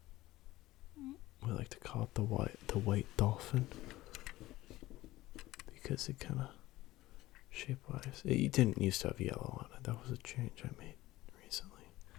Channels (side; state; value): right; quieter; 17.3 dB